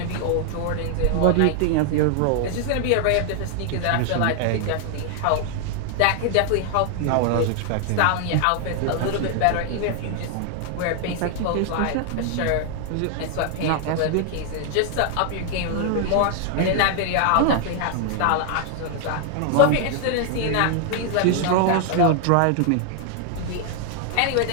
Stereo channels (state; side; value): different; both; correlation 0.00